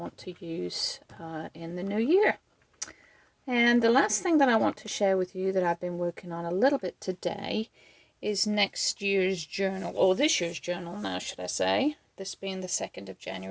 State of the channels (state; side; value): identical; both; correlation 1.00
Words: to use in the new year. And the last thing that I want to share with you that I've been working on a little bit today is next year's journal, or this year's journal now, should I say, this being the 2nd of